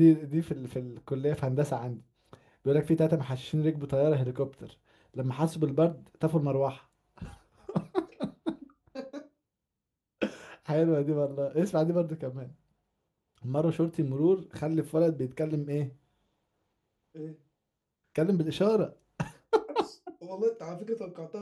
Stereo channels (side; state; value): both; identical; correlation 1.00